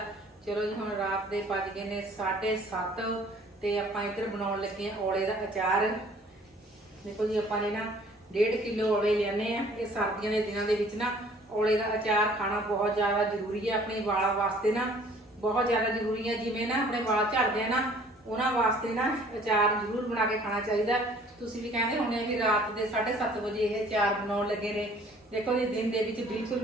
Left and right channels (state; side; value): normal; both; correlation 0.55